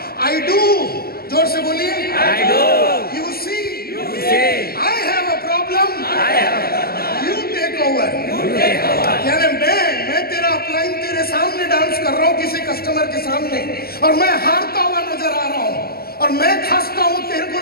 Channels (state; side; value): late; right; 0.45 ms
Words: आई डू। जोर से बोलिए, I do you see, I have a problem, you take over. यानी मैं तेरा अपलाइन तेरे सामने डांस कर रहा हूँ, किसी कस्टमर के सामने, और मैं हारता हुआ नजर आ रहा हूँ, और मैं खांसता हूँ, तेरे को